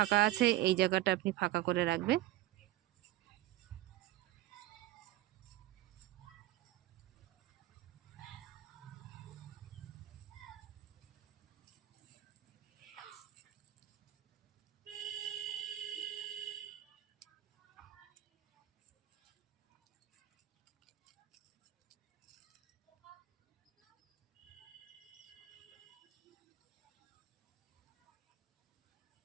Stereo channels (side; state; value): left; quieter; 15.3 dB